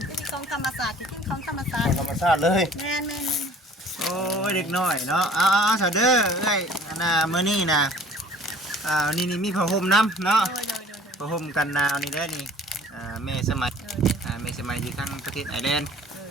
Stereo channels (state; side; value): normal; both; correlation 0.51